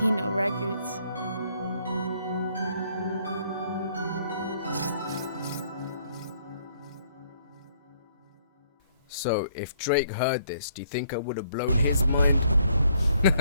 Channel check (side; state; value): both; inverted; correlation -0.66